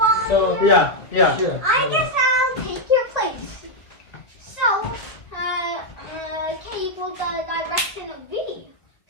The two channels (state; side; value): late; right; 2.0 ms